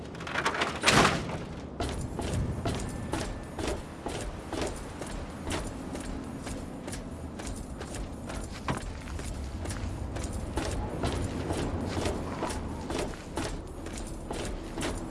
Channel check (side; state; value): both; identical; correlation 1.00